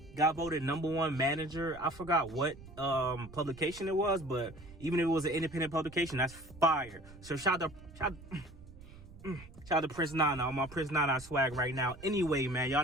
Got voted #1 manager. I forgot what publication it was, but even if it was an independent publication, that's fire. So shout out to Prince Nana on my Prince Nana swag right now. Anyway, man,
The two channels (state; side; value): noise; right; rumble, 18 dB below the sound